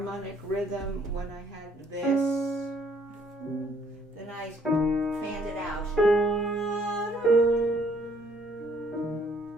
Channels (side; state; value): both; normal; correlation 0.64